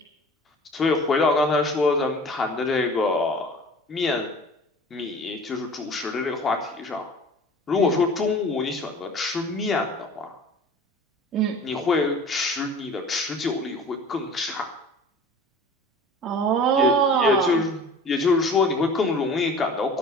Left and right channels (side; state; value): both; normal; correlation 0.43